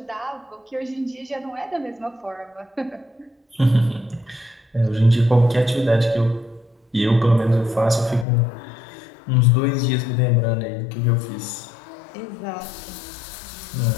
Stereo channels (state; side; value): drops out; right; at 8.2 s